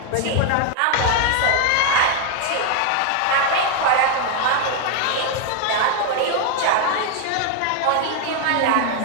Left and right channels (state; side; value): different; both; correlation 0.00